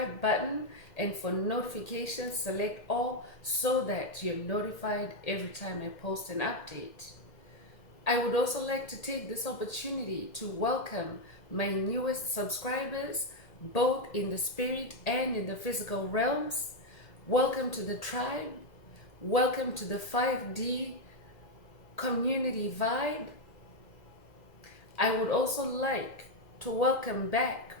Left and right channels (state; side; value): late; right; 2.0 ms